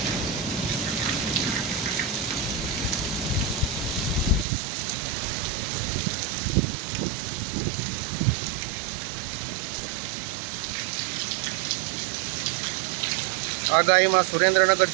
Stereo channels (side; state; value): left; drops out; at 4.5 s